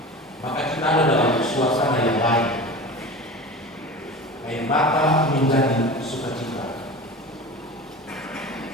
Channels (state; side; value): normal; both; correlation 0.33